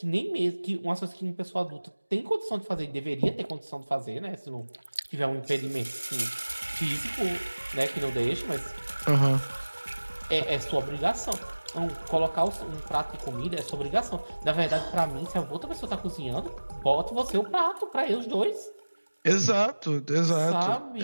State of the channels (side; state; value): both; inverted; correlation -1.00